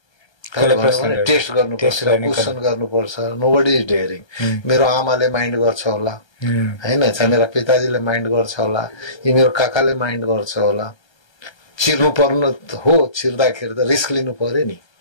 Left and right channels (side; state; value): right; late; 1.3 ms